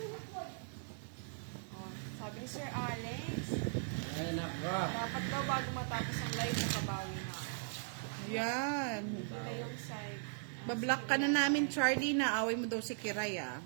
Oh, sabi ni Sir Alex, Ay, naka. dapat daw bago matapos ang live, nakabawi na ako. Yan. Ito na yung side. Bablock ka na namin, Charlie, na away mo daw si Kiray, ah.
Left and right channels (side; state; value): left; silent; 52 dB below the other